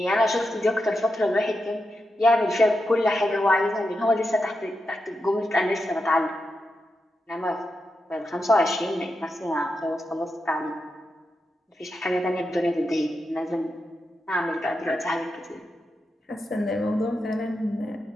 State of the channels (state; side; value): normal; both; correlation 0.87